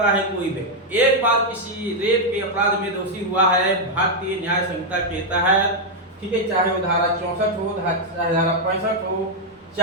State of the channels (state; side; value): normal; both; correlation 0.00